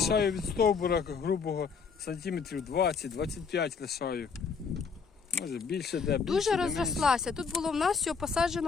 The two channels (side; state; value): right; quieter; 5.6 dB